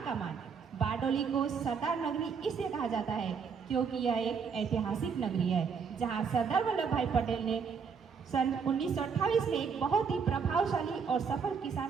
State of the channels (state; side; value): quieter; left; 6.0 dB